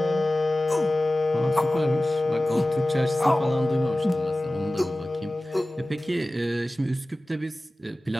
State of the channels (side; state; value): both; normal; correlation 0.97